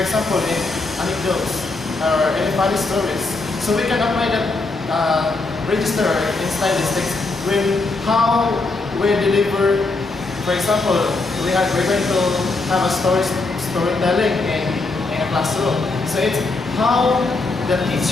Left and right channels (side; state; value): right; quieter; 3.5 dB